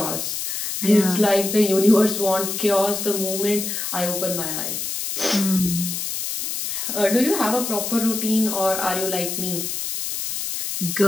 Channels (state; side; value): noise; left; hiss, 3 dB below the sound